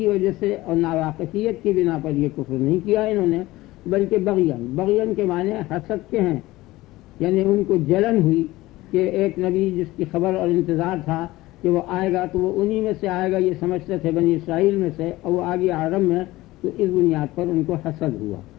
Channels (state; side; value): quieter; right; 18.3 dB